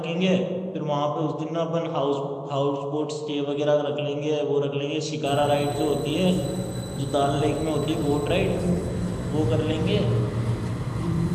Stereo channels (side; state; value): both; identical; correlation 1.00